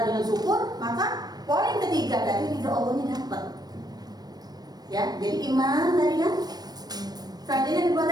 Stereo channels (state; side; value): late; left; 0.19 ms